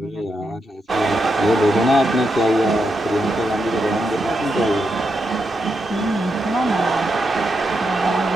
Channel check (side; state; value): both; normal; correlation 0.84